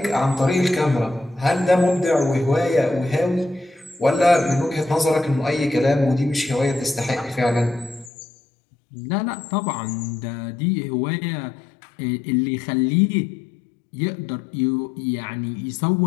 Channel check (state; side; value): drops out; right; at 8.1 s